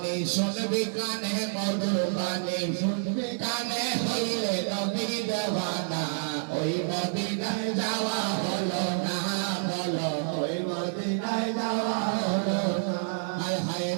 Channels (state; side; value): silent; left; digital silence